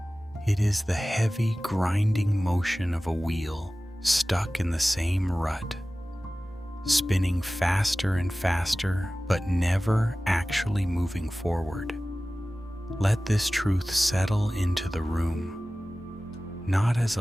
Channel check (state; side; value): normal; both; correlation 0.97